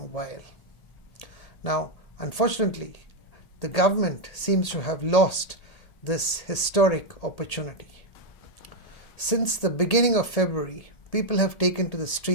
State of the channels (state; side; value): late; right; 1.8 ms